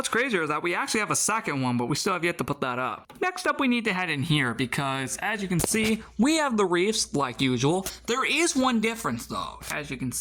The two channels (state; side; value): identical; both; correlation 1.00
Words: crazier is that we actually have a second one, but we still have yet to put that up. Next up, we need to head in here because, as you can see, we have the reefs like usual. There is one difference, though. As you can